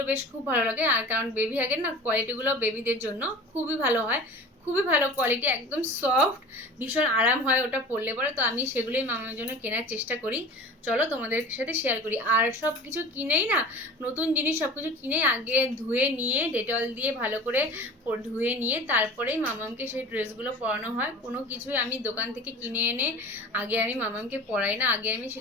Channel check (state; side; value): normal; both; correlation 0.39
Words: বেশ খুব ভালো লাগে, আর কারণ বেবি হাগের না কোয়ালিটিগুলো বেবিদের জন্য খুবই ভালো হয়, খুবই ভালো কোয়ালিটি, একদম সফট, ভীষণ আরাম হয় ওটা পরলে পরে। তো আমি সেগুলোই মামার জন্য কেনার চেষ্টা করি। চলো তোমাদের সাথে শেয়ার করি। আর সব কিছু কিনেই না, নতুন জিনিস সব কিছু কিনেই আগে ধুয়ে নিয়ে ডেটল দিয়ে ভালো করে ধুয়ে নিয়ে তারপরেই মামামকে সেই ড্রেসগুলো পরানো হয়। কোনো কিছুই আমি দোকান থেকে কিনে এনে আগে আমি মামামকে পরাই না, আগে আমি